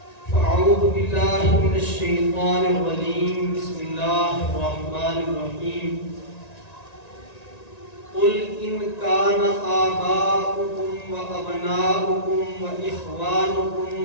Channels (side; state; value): right; late; 1.9 ms